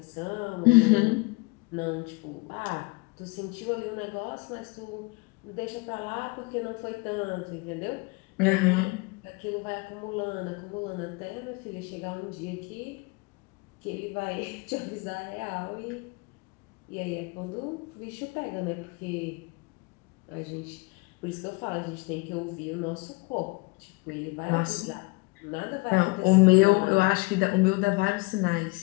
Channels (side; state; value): right; quieter; 26.1 dB